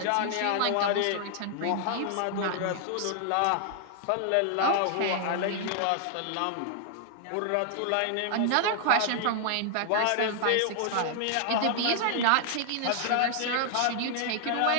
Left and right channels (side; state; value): both; different; correlation 0.00